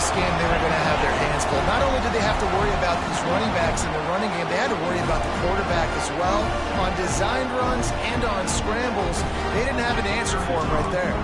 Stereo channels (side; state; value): both; identical; correlation 1.00